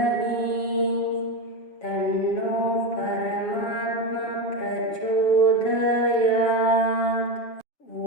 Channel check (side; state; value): right; late; 7.3 ms